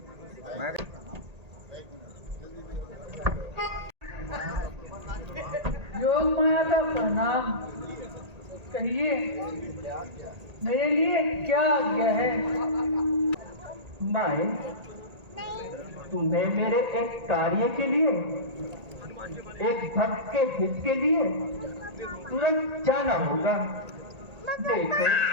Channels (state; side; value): late; left; 1.8 ms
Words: योग माया का प्रणाम। कहिए मेरे लिए क्या आज्ञा है? माए, तुम्हें मेरे एक कार्य के लिए, एक भक्त के हित के लिए तुरंत जाना होगा। देखो,